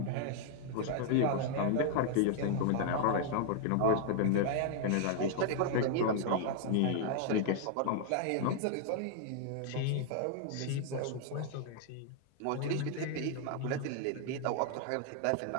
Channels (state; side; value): different; both; correlation 0.00